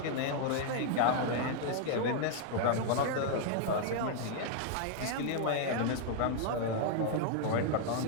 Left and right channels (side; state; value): both; different; correlation 0.00